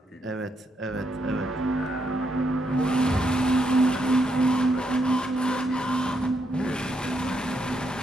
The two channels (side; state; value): both; normal; correlation 0.78